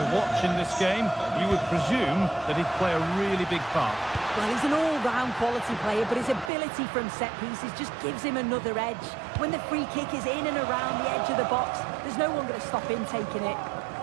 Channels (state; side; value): drops out; left; at 6.5 s